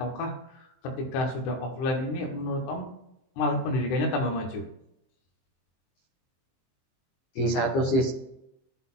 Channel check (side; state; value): right; late; 23 ms